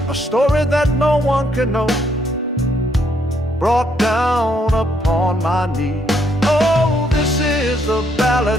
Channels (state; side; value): normal; both; correlation 0.72